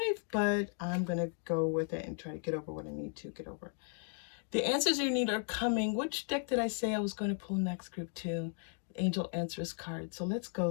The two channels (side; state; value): right; silent; 54 dB below the other